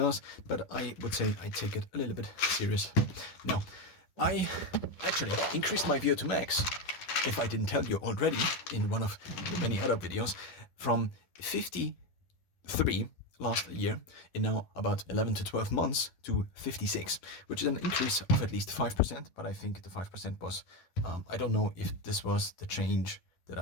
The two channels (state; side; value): late; right; 11 ms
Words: but I would say I take it a little bit serious. Now, I actually increased my VO2 max, if I didn't tell you already in one of the many other videos, from 53 last year in now about 11 to 12 months to 56, which is an increase of at least 5%, but I think the 5% was, I don't know if this was the change that